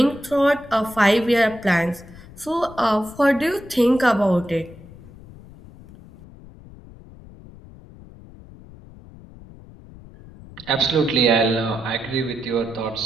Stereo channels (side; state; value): left; noise; rumble, 20 dB below the sound